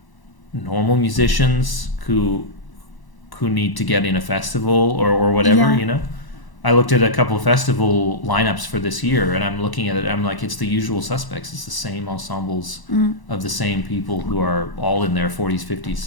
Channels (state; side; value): late; right; 1.0 ms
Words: normal musicians who need to get in a festival or whatever? Yeah. I looked at a couple of festival lineups for this year, and I'm looking at it. I'm like, it's the usual suspects. It's the same ensembles of the same people who are all in their 40s, 50s,